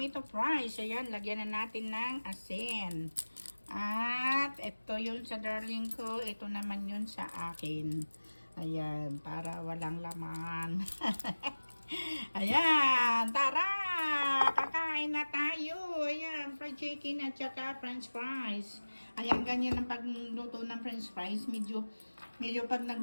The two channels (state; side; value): inverted; both; correlation -1.00